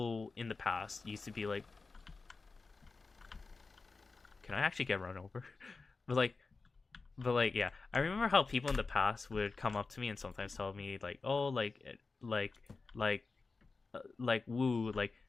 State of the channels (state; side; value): quieter; right; 4.1 dB